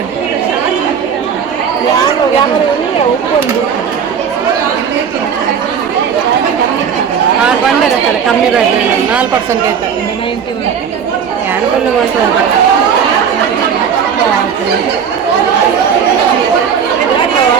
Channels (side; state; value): left; quieter; 7.3 dB